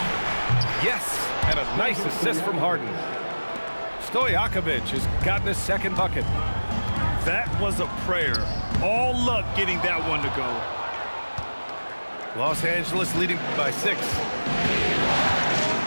Yes, and a nice assist from Harden. Stojakovic has gotten his second bucket. That was a prayer. All luck getting that one to go. Los Angeles leading by 6.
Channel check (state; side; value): inverted; both; correlation -1.00